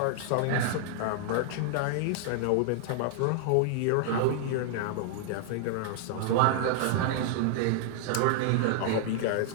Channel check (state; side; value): different; both; correlation -0.01